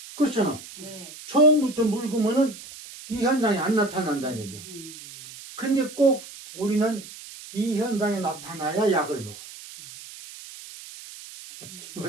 그렇잖아. 네. 처음부터 묽으면은 이 현상이 안 나타난다는 얘기야. 근데 꼭 우리는 이 현상이 나타나야 약을 먹어.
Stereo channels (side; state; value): right; noise; hiss, 15 dB below the sound